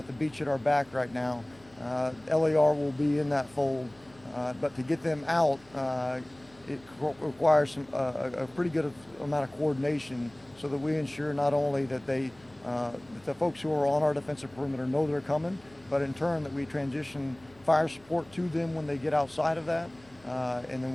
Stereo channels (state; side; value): noise; left; hum, 27 dB below the sound